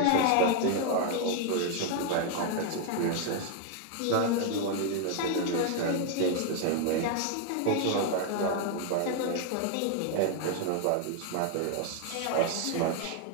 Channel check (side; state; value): both; different; correlation 0.00